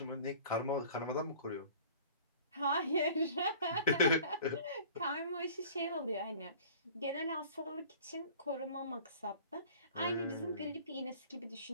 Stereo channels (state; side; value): inverted; both; correlation -0.46